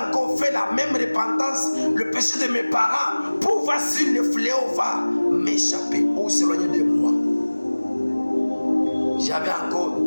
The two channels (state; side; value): inverted; both; correlation -1.00